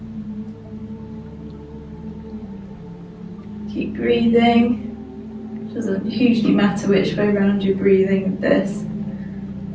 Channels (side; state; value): both; identical; correlation 1.00